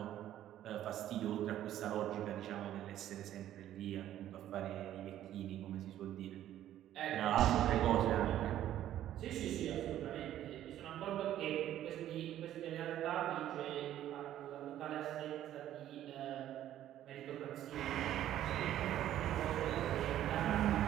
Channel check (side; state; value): left; quieter; 12.2 dB